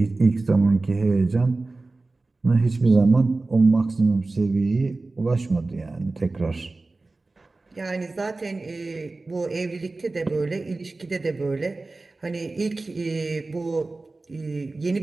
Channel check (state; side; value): quieter; left; 3.3 dB